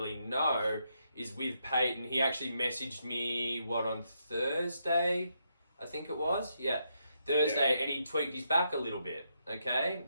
know, is with Payton, he actually messaged me, on Thursday, I think it was? Yeah, Thursday, and he tweaked his back a little bit, okay?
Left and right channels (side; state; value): both; inverted; correlation -0.80